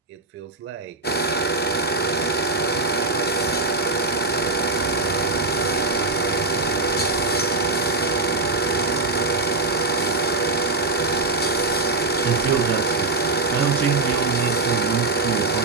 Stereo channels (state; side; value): quieter; left; 3.1 dB